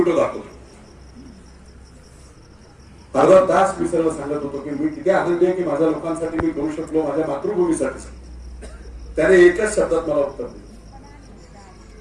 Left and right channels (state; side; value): identical; both; correlation 1.00